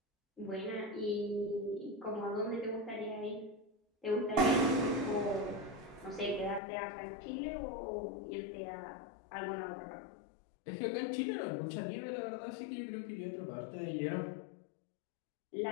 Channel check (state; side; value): drops out; right; at 6.6 s